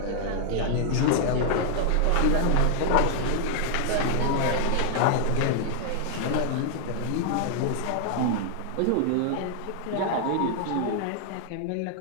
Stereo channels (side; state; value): both; different; correlation 0.00